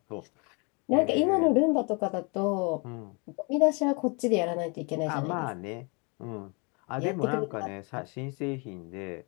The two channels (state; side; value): quieter; right; 32.4 dB